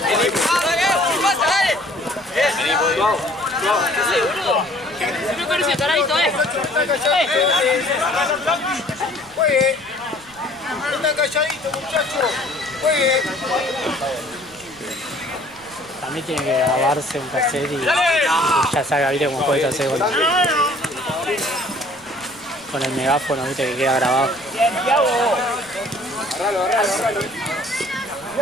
Juegue. Están calladitos, muchachos. Juegue. A mí tiene que grabarse un cassette y ya salga, viste, como puedes hacer con el megáfono, viste, que queda grabado. Agarralo, agarralo, agarralo.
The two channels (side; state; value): right; noise; rumble, 25 dB below the sound